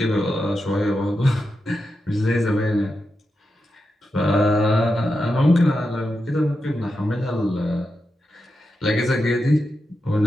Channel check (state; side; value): normal; both; correlation 0.88